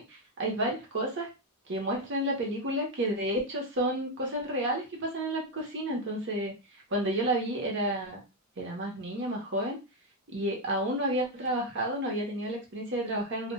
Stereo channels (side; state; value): both; normal; correlation 0.05